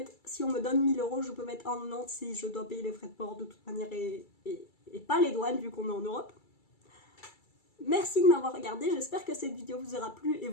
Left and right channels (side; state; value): right; late; 2.3 ms